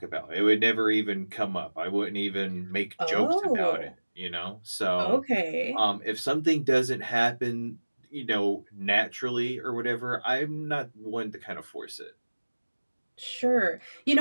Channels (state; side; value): inverted; both; correlation -1.00